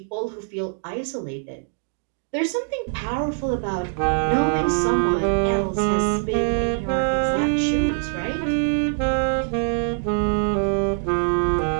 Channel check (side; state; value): left; silent; digital silence